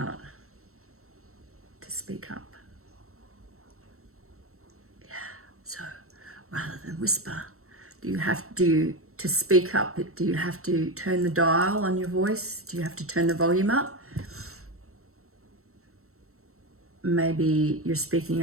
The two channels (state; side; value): late; left; 0.63 ms